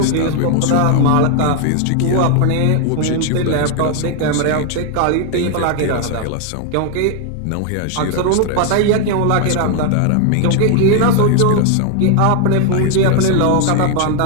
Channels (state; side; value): different; both; correlation 0.00